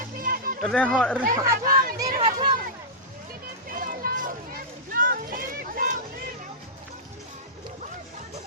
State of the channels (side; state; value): both; normal; correlation -0.12